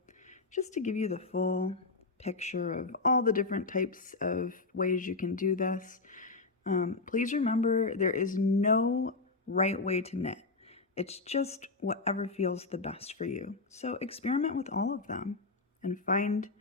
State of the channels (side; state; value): right; quieter; 3.8 dB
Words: just to give you the full picture of all the different types of ways you can do this, please remember there is no right way to knit. It's just whatever feels the best for you. So experiment with all of them and find